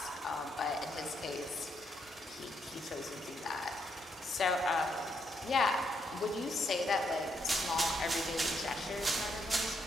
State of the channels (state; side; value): normal; both; correlation 0.77